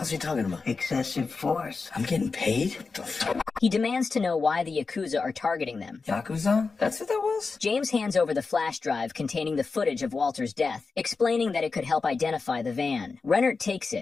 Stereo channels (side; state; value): right; quieter; 4.4 dB